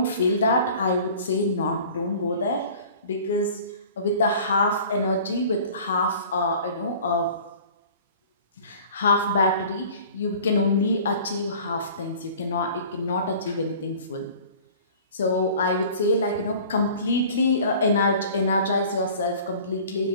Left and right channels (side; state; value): both; inverted; correlation -0.46